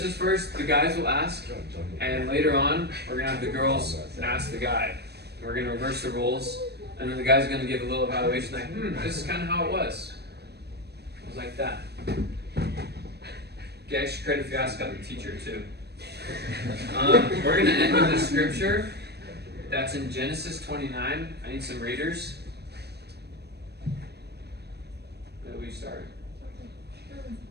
is first, the guys will ask, and later on, we're gonna have the girls ask the guy. We're gonna reverse the roles, and then the guy's gonna give a little evaluation like, this is kind of how it was. It was like that. Get extra credit if you ask out the teacher too. We're gonna end with the scripture. That's in Genesis 29. I need some readers. Where do we start?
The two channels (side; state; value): left; late; 0.48 ms